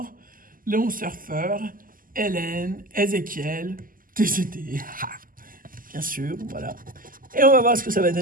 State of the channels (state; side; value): late; left; 0.41 ms